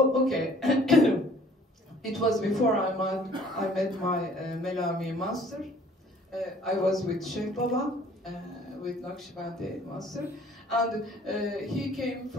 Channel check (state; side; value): normal; both; correlation 0.54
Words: it was before I met my Melami master. I was with Sheikh Baba, with Naqshbandi master, and he came